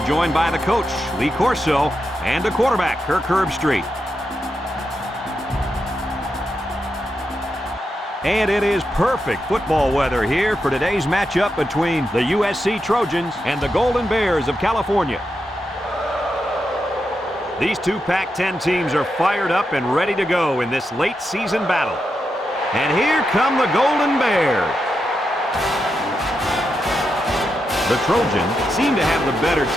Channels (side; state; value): both; normal; correlation 0.86